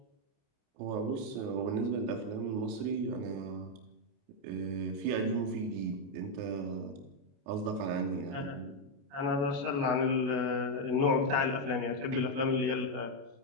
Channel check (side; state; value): left; late; 29 ms